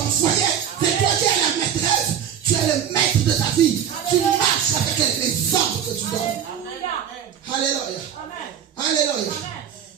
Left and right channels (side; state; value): left; quieter; 8.9 dB